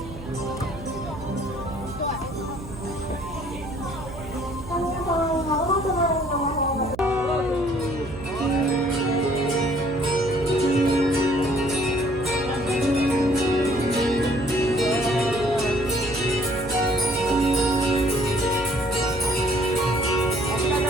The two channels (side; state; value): right; noise; hum, 13 dB below the sound